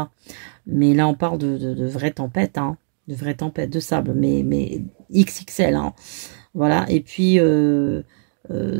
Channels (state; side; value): silent; left; digital silence